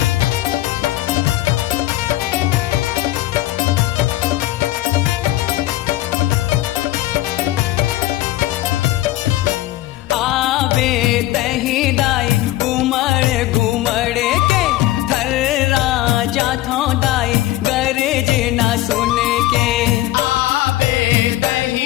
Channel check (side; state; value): right; quieter; 15.8 dB